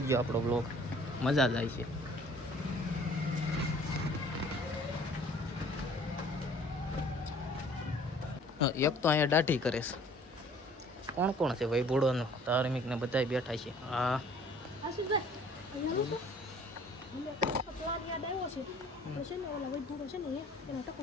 આપણો બ્લોગ, મજા જ આવી છે. એક તો અહીંયા દાઢી કરે છે. કોણ કોણ છે ભાઈ? ભૂડોનો ધાર્મિક ને બધા બેઠા છે. હા પ્લાન યાદ આવ્યો છે. આપણે છે ને ઓલા વૈભૂરો છે ને એનો ટકો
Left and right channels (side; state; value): both; normal; correlation 0.53